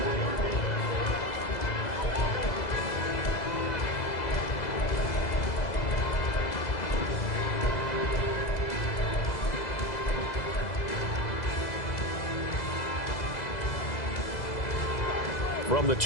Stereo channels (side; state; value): right; late; 2.0 ms